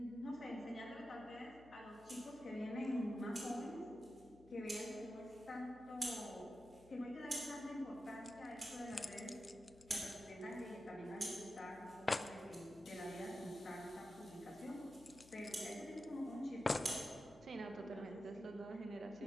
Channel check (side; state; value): left; noise; hum, 22 dB below the sound